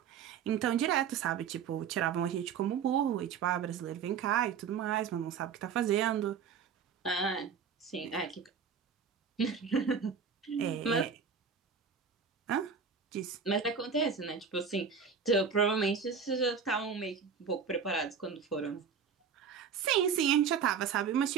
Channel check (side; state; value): left; quieter; 6.6 dB